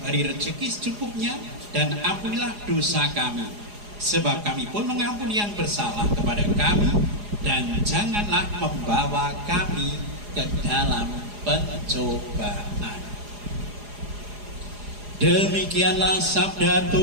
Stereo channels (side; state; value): left; late; 4.8 ms